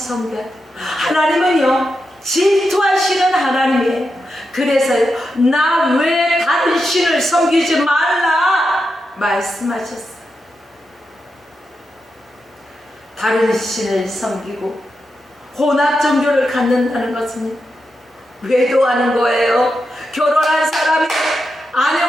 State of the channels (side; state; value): both; normal; correlation 0.87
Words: 돼요. 하나님은요, 질투하시는 하나님이에요. 그래서 나 왜 다른 신을 섬기지 말라 말씀하셨어요. 다른 신을 섬기고 혼합 종교를 갖는다는 것은 외도하는 거예요. 결혼한 사람이